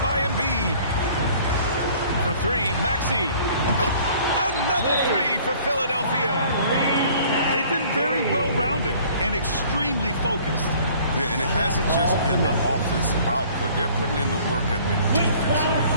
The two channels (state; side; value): inverted; both; correlation -0.53